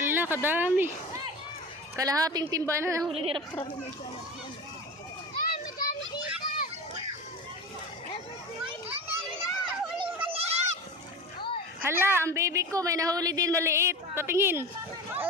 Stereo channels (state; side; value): normal; both; correlation 0.30